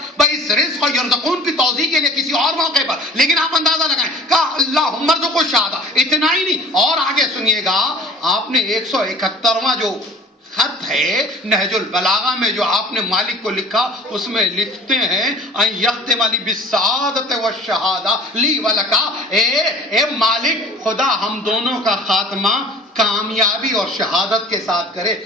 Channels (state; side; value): normal; both; correlation 0.44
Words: بھائی. اس رزق کو یرزقون کی توضیح کے لیے کسی اور موقع پر, لیکن آپ اندازہ لگائیں کہا اللہم ارزق الشہادہ. اتنا ہی نہیں, اور آگے سنیے گا, آپ نے 171واں جو خط ہے نہج البلاغہ میں جو آپ نے مالک کو لکھا, اس میں لکھتے ہیں ان یختم لی بالسعادت والشہادہ لی ولکا. اے مالک خدا ہم دونوں کا خاتمہ کامیابی اور شہادت کے ساتھ کرے.